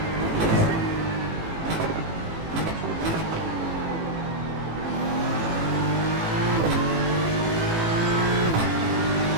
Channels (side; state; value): left; late; 18 ms